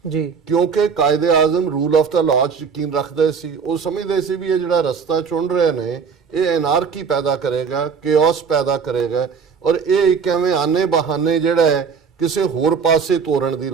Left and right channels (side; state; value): left; quieter; 6.0 dB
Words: ਜੀ, ਕਿਉਂਕਿ ਕਾਇਦੇ ਆਜ਼ਮ ਰੂਲ ਆਫ ਦਾ ਲਾਅ 'ਚ ਯਕੀਨ ਰੱਖਦੇ ਸੀ। ਉਹ ਸਮਝਦੇ ਸੀ ਵੀ ਇਹ ਜਿਹੜਾ ਰਸਤਾ ਚੁਣ ਰਹੇ ਨੇ ਇਹ ਐਨਾਰਕੀ ਪੈਦਾ ਕਰੇਗਾ, ਕੇਓਸ ਪੈਦਾ ਕਰੇਗਾ, ਔਰ ਇਹ ਇੱਕ ਐਵੇਂ ਆਨੇ ਬਹਾਨੇ ਜਿਹੜਾ ਹੈ ਕਿਸੇ ਹੋਰ ਪਾਸੇ ਤੋਰਨ ਦੀ